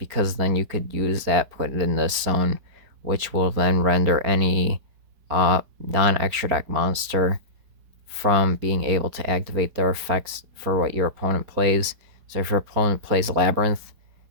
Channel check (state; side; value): late; left; 4.4 ms